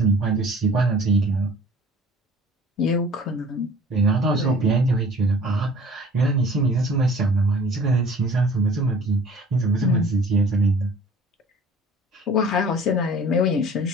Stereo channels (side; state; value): both; normal; correlation 0.49